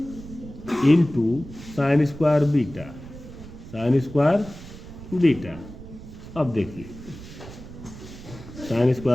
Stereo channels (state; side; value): noise; right; rumble, 14 dB below the sound